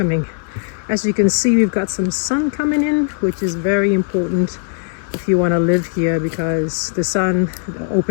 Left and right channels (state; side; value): silent; right; digital silence